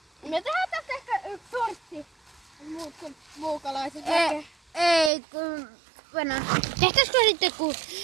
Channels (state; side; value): drops out; left; at 5.1 s